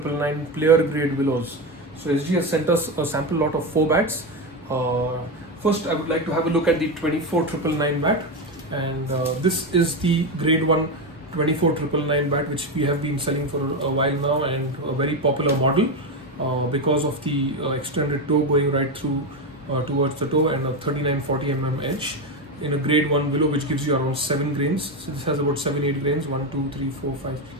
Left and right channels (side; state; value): both; normal; correlation 0.13